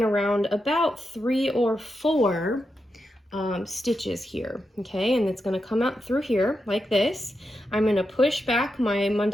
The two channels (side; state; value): both; normal; correlation 0.87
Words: around about 3 or 4 stitches here, okay, and it's going to come out through here like this. I'm going to push back my